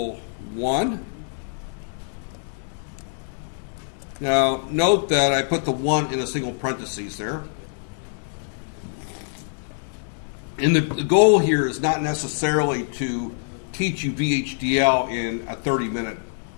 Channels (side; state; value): right; silent; digital silence